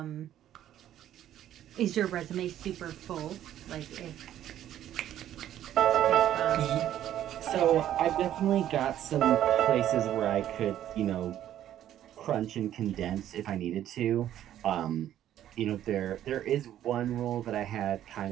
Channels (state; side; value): quieter; left; 11.6 dB